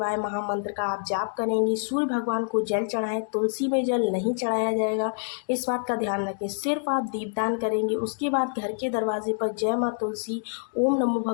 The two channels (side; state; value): right; silent; digital silence